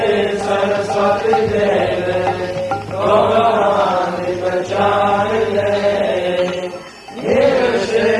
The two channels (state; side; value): identical; both; correlation 1.00